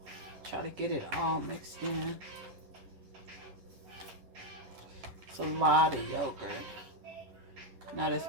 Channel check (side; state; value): left; late; 11 ms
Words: Try to get it all mixed in. It's a lot of yogurt. Not as